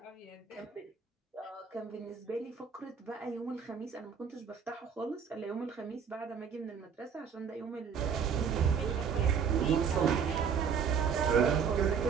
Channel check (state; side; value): quieter; left; 6.8 dB